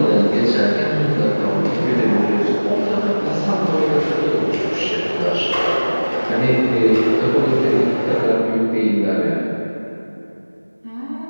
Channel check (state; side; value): inverted; both; correlation -1.00